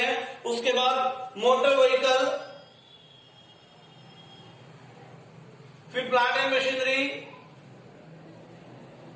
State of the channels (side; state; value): both; identical; correlation 1.00